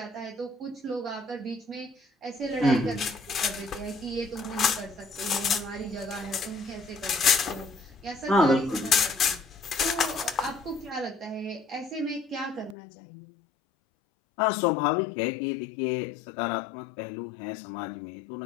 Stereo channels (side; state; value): right; drops out; at 12.8 s